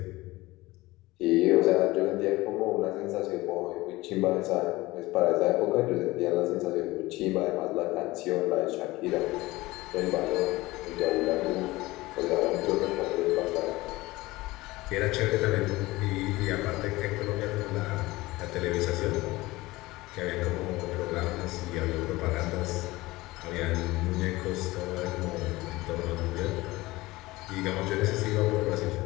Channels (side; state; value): right; quieter; 19.8 dB